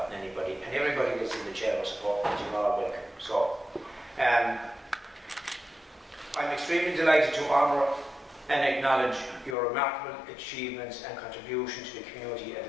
anybody. And everybody that's in the chamber support, you're all welcome. So, I'm extremely delighted to honour and acknowledge your remarkable achievements and contribution to the community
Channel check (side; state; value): right; drops out; at 9.6 s